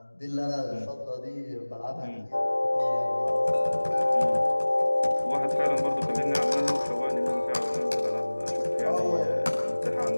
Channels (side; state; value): both; inverted; correlation -1.00